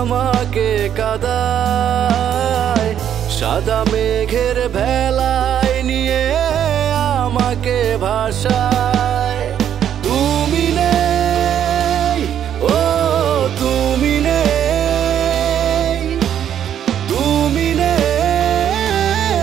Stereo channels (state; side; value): quieter; left; 9.7 dB